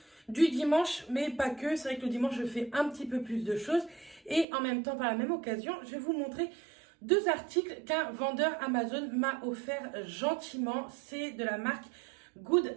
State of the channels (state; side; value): drops out; left; at 4.5 s